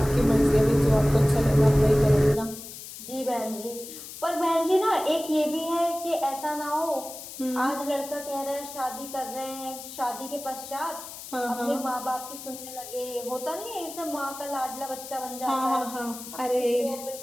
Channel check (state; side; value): noise; left; hiss, 12 dB below the sound